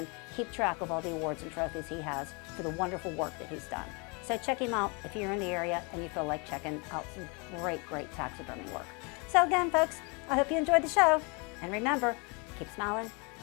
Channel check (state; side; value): quieter; right; 31.4 dB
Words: keep track of all the awards and trophies he has for the wonderful work that he's done. So check him out if you're in the area and you feel like checking out some great taxidermy work. So again, folks, I hope you enjoyed the show. And remember, keep smiling,